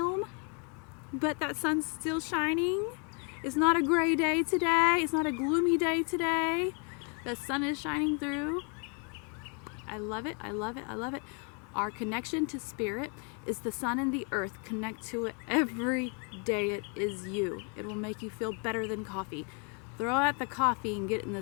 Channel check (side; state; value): right; quieter; 37.2 dB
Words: but that sun's still shining. It's not a gray day today. It's not a gloomy day today. The sun is shining through. I love it. I love it. I love it. Our connection to spirit is the sun and the earth. Connect to it every day. It is you. It will make you feel better than coffee. Throw out the coffee and get in the